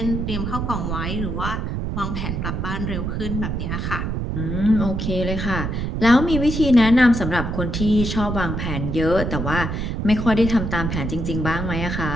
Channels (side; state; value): right; noise; rumble, 2 dB below the sound